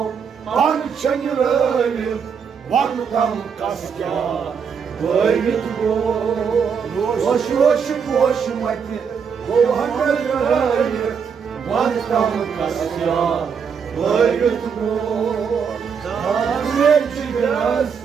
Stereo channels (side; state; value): left; quieter; 6.6 dB